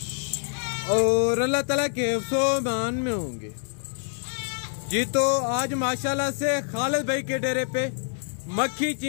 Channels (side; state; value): right; silent; digital silence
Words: और अल्लाह ताला के हिफ्ज़ो-ओ-मान में होंगे जी। तो आज माशाल्लाह से खालिद भाई के डेरे पे मक्खी